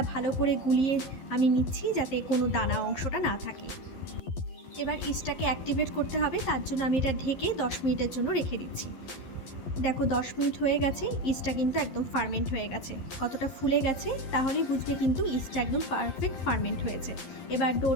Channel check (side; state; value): right; late; 12 ms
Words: ভালো করে গুলিয়ে আমি নিচ্ছি যাতে কোনো দানা অংশটা না থাকে। এবার ইস্টটাকে অ্যাক্টিভেট করতে হবে, তার জন্য আমি এটা ঢেকে 10 মিনিটের জন্য রেখে দিচ্ছি। দেখো 10 মিনিট হয়ে গেছে, ইস্টটা কিন্তু একদম ফার্মেন্ট হয়ে গেছে। কতটা ফুলে গেছে তাহলেই বুঝবে কিন্তু ইস্টটা একদম পারফেক্ট ফার্মেন্ট হয়েছে। এবার